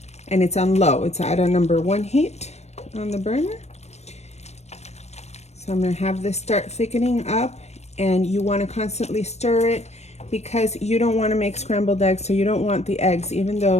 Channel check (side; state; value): right; late; 0.32 ms